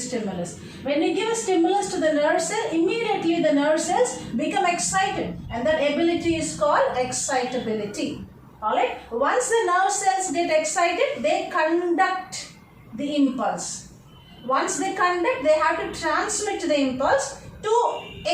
stimulus. When you give a stimulus to the nerve cell, immediately the nerve cells become excited, and that ability is called excitability. Alright? Once the nerve cells get excited, they conduct the impulse. Once they conduct, they have to transmit the impulse to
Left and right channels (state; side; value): identical; both; correlation 1.00